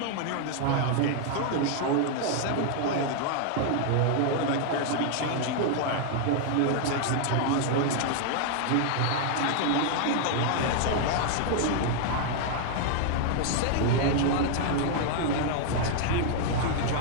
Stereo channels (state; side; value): different; both; correlation 0.00